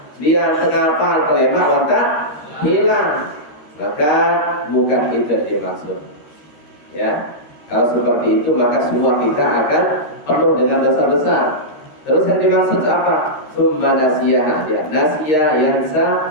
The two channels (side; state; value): right; late; 13 ms